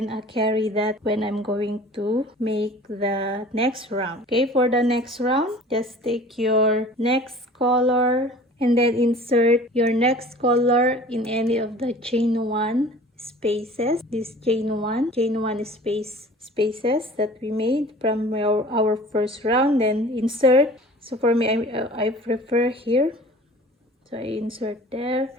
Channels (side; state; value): both; normal; correlation 0.45